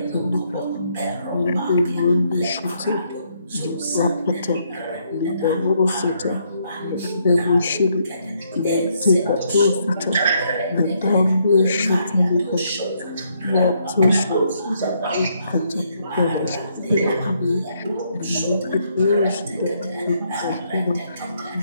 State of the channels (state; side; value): inverted; both; correlation -0.73